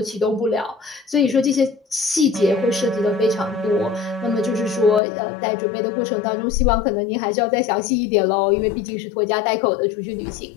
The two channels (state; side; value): drops out; right; at 5.0 s